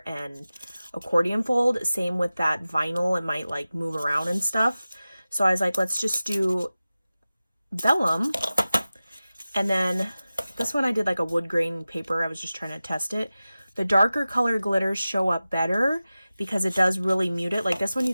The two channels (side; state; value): both; inverted; correlation -0.96